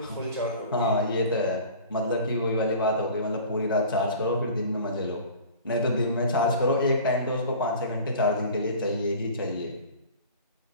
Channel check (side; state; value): both; inverted; correlation -0.42